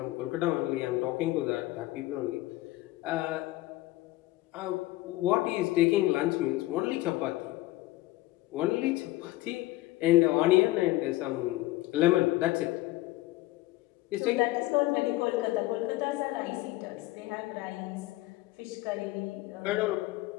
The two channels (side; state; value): right; quieter; 17.9 dB